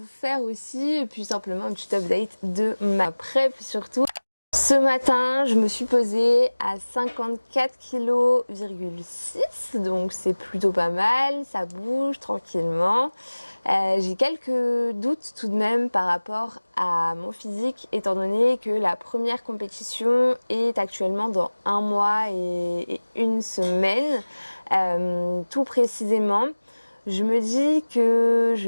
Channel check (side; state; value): both; inverted; correlation -1.00